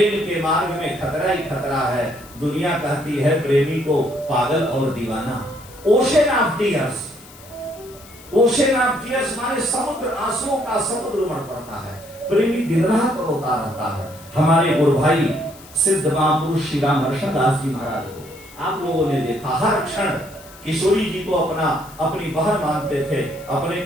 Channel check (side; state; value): left; noise; hiss, 21 dB below the sound